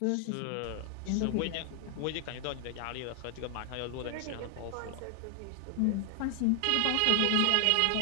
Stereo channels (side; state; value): both; different; correlation 0.00